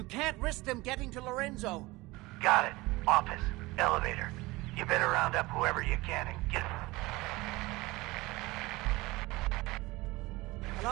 can't risk them getting to Lorenzo. Got it. Office. Elevator. You better round up whoever you can and get...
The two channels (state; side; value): quieter; left; 21.3 dB